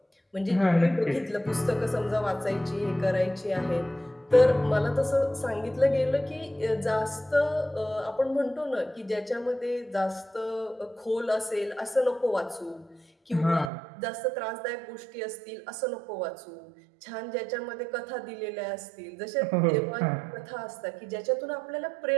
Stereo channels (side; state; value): left; drops out; at 13.7 s